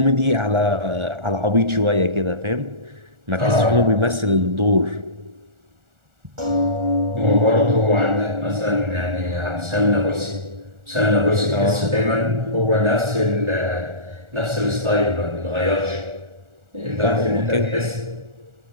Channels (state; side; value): late; left; 1.4 ms